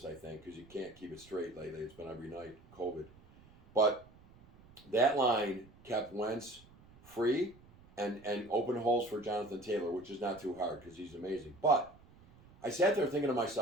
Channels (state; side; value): noise; right; rumble, 24 dB below the sound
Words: I think, because you can't keep it straight lately. It's been every night, COVID. But that line kept Wentz free and open holes for Jonathan Taylor, which is not too hard because he's amazing. But I sat there thinking to